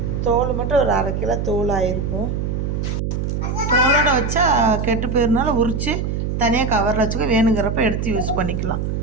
தோல் மட்டும் ஒரு 1/2 கிலோ தோல் ஆகிருக்கும். தோலோடு வச்சா கெட்டு போயிருந்தாலும் உரித்து தனியாக கவரில் வச்சுக்க, வேணுங்கிறப்ப எடுத்து யூஸ் பண்ணிக்கலாம்.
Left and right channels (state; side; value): noise; right; hum, 2 dB below the sound